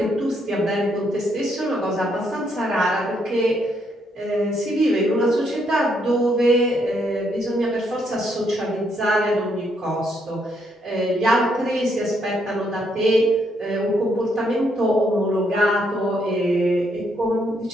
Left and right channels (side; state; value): both; normal; correlation 0.74